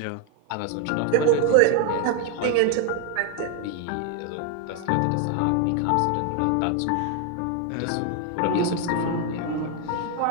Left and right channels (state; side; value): different; both; correlation 0.01